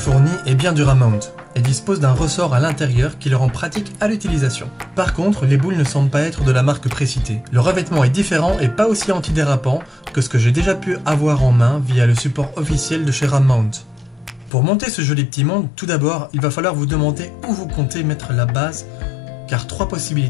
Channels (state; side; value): drops out; right; at 14.5 s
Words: est bien dur à mount et dispose d'un ressort à l'intérieur qui le rend pratique à l'utilisation. Par contre, les boules ne semblent pas être de la marque précitée. Le revêtement est différent et pas aussi antidérapant que ce que j'ai déjà pu avoir en main via le support officiel de chez Rammount. Pour monter ce joli petit monde, tout d'abord, il va falloir vous demander où vous comptez mettre la base, car 3